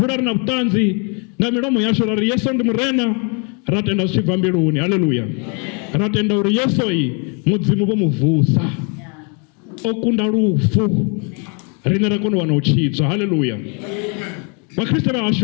rina butanzi nga milomo yashu rari Yesu ndi murena. Ratenda uchiva mbiruni. Haleluya. Ratenda uri Yesu hii mudzimu bo muvusa. Okunda rufu rine rakono wana uchidzwa. Haleluya. Wakristo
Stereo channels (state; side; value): quieter; right; 35.8 dB